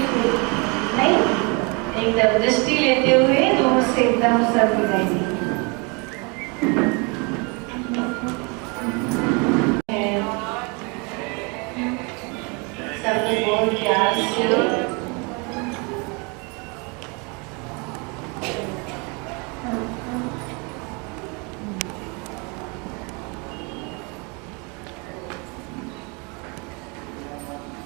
नहीं, एकदम दृष्टि लेते हुए दूर से एकदम सब मिलाएंगे। सबने बहुत प्यार से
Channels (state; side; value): quieter; left; 31.2 dB